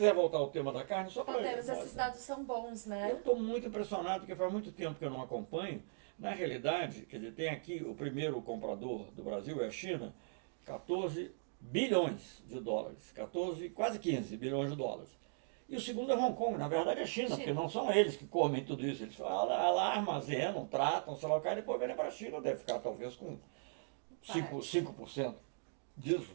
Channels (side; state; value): left; silent; digital silence